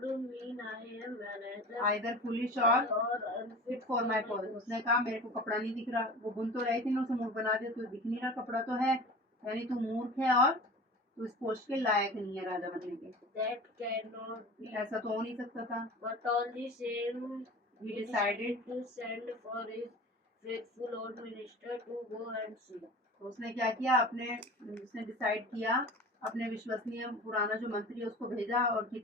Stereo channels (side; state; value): both; normal; correlation 0.37